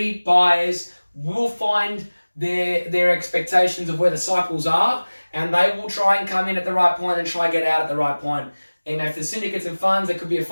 buyers will find their expectations of where the cycles are, and they will try and come in at the right point and try and get out at the right point. And if the syndicates and funds, there could be a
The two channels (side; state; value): both; inverted; correlation -1.00